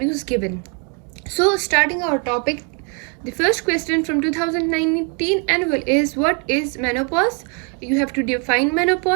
given. So, starting our topic, the first question from 2019 annual is, what is menopause? You have to define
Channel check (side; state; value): left; quieter; 34.7 dB